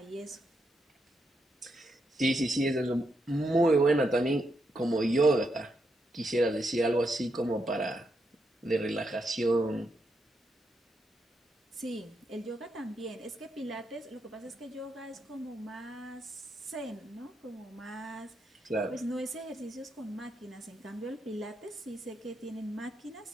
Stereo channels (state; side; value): normal; both; correlation 0.81